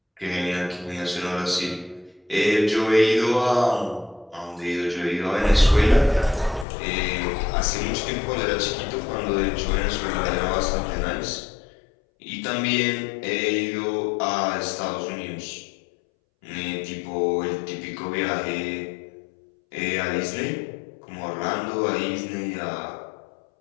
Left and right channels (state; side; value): drops out; right; at 6.7 s